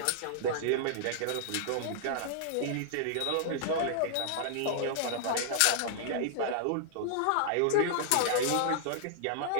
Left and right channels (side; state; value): both; different; correlation -0.01